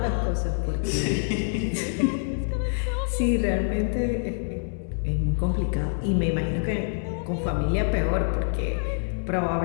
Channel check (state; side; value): silent; right; 61 dB below the other